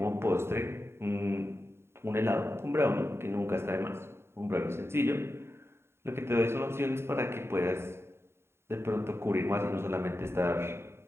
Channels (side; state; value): left; late; 0.12 ms